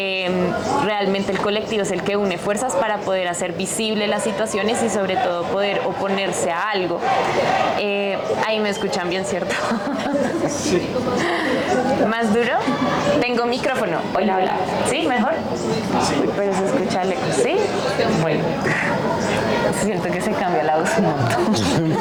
realmente el colectivo es el que une fuerzas para poder hacer visible las situaciones y sobre todo poder oponerse a algo. Ahí me escuchan bien, ¿cierto? Sí. ¿Más duro? Tengo micrófono. Hola, hola. ¿Sí? ¿Mejor? Uy, pero se escucha lejos. ¿Sí? Bueno. Siento que se cambia la voz un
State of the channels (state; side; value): identical; both; correlation 1.00